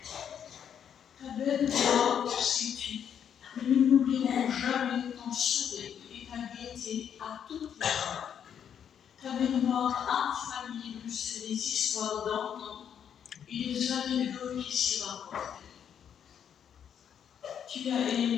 Ta belle voix, sais-tu, nous n'oublierons jamais ton sourire et ta gaieté à toutes les heures. Ta mémoire infaillible sur les histoires d'antan et les anecdotes qui s'y rapportent. Tu as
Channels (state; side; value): quieter; right; 8.5 dB